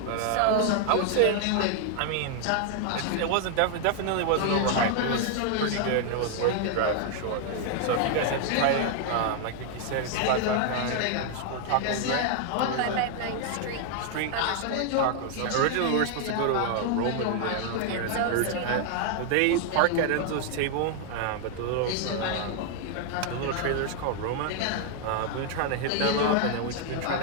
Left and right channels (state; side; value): different; both; correlation 0.00